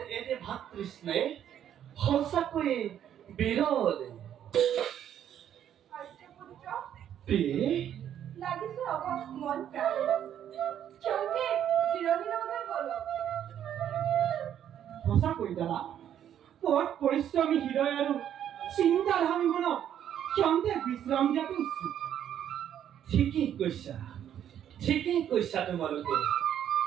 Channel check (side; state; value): left; quieter; 10.1 dB